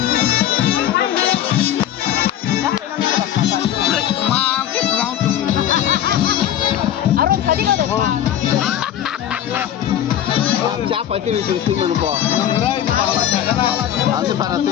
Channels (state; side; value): quieter; right; 11.0 dB